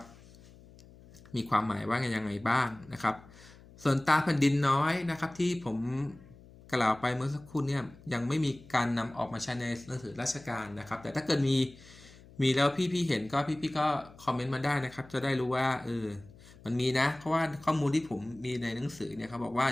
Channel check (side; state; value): left; noise; hum, 22 dB below the sound